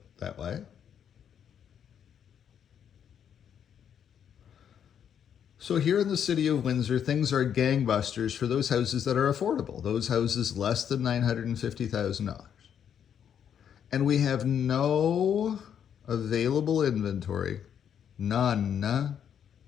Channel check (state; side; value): quieter; right; 8.6 dB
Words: that way. So here in the city of Windsor, things are gangbusters for those houses that are affordable, those houses less than $950,000. And we have no available inventory, none,